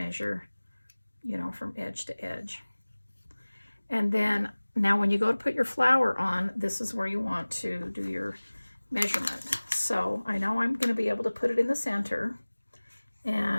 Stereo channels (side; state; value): both; inverted; correlation -1.00